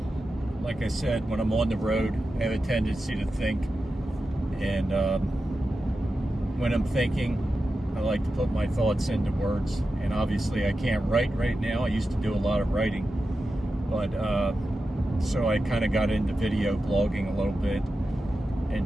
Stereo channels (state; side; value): normal; both; correlation 0.91